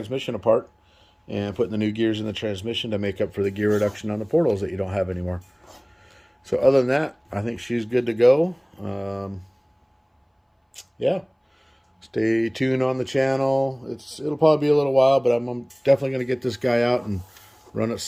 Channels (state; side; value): identical; both; correlation 1.00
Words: apart and putting the new gears in the transmission to make up for the gear reduction on the portals that you don't have anymore. So other than that, I think she's good to go. Yeah. Stay tuned on the channel. It'll probably be a little while, but I'm definitely going to get this guy out and run it